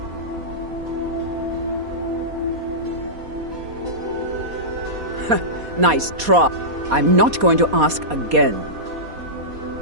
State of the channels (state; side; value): late; left; 4.2 ms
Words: Nice try. I'm not going to ask again.